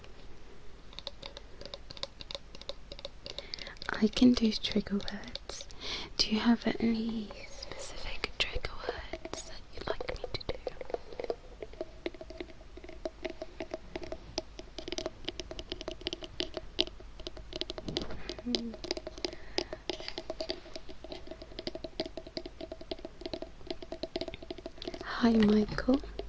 I can do trigger words. Do you have any specific trigger words that you'd like me to do? Hi Michael.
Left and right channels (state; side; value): identical; both; correlation 1.00